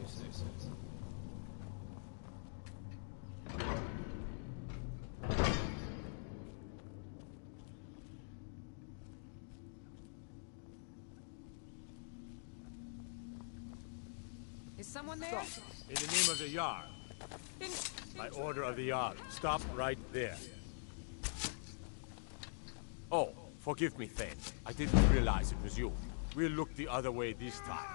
say, sir. Is someone there? Stop. In the name of the Jarl. By order of the Jarl. Stop right there. Oh, forgive me, Thane. I didn't realize it was you. We'll look the other way this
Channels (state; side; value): silent; right; digital silence